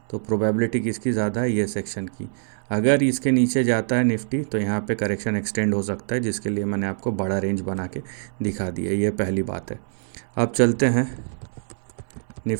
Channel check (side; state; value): left; silent; 62 dB below the other